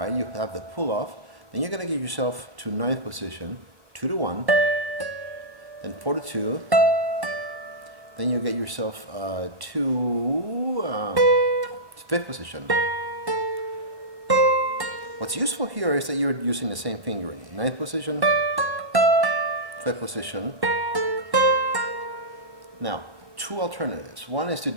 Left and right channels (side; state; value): left; late; 1.0 ms